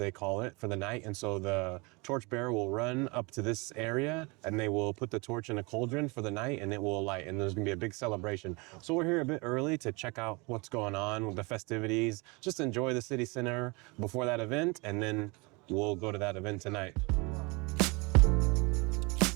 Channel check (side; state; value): left; quieter; 27.8 dB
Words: call it, for the night. And so the torchbearer will run up to this area and they will put the torch in a cauldron for the night and it will light. And there's gonna be a big celebration. So we're here a bit early to check out what's going on with the festivities, just enjoy the city center before that event, and then we'll go to that event tonight.